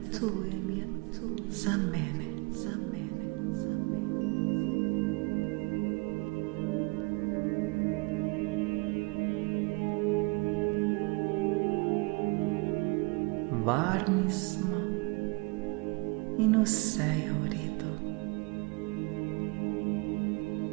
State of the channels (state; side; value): quieter; left; 28.9 dB